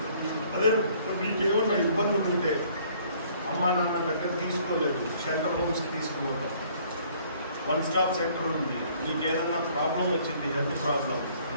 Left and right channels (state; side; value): inverted; both; correlation -0.59